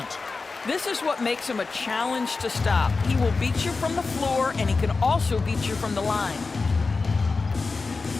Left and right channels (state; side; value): quieter; right; 4.1 dB